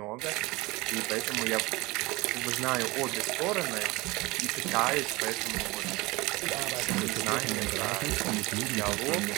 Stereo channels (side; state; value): left; quieter; 22.5 dB